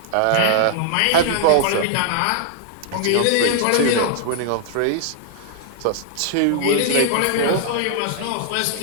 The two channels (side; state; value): both; different; correlation -0.01